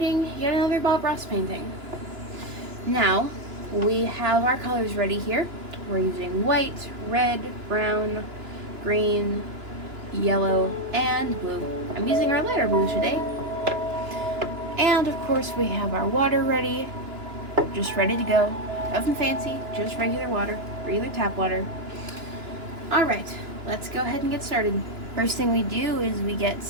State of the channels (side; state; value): left; late; 2.9 ms